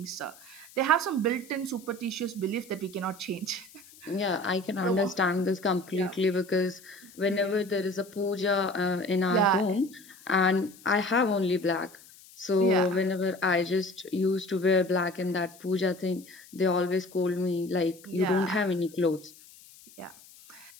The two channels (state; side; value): noise; left; hiss, 22 dB below the sound